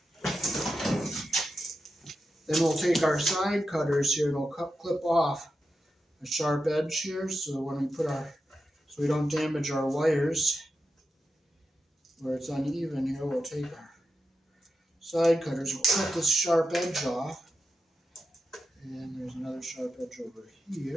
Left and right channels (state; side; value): normal; both; correlation 0.89